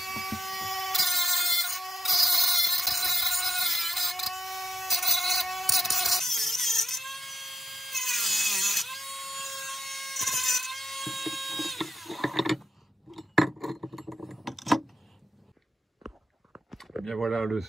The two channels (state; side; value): normal; both; correlation 0.87